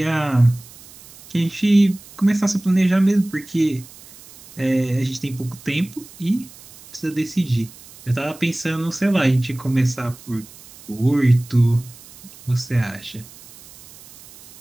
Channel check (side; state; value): right; noise; hiss, 21 dB below the sound